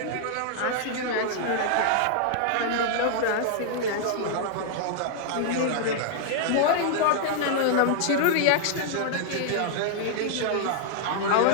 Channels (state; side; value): different; both; correlation -0.01